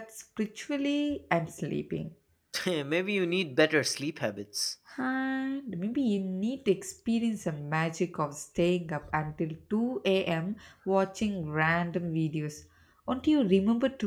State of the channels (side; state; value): both; identical; correlation 1.00